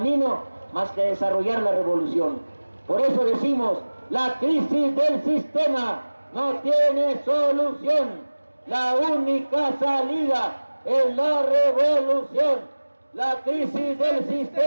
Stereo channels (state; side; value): inverted; both; correlation -1.00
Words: más que desarrollar la revolución. Por eso decimos, la crisis del sistema no tiene solución, la única salida es la revolución. La crisis del